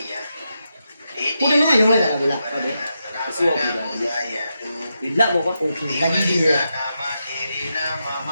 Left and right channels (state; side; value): inverted; both; correlation -0.86